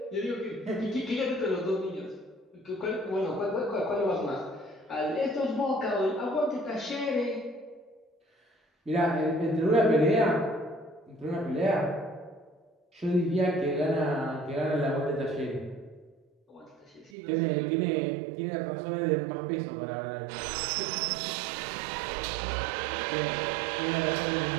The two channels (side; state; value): left; drops out; at 17.1 s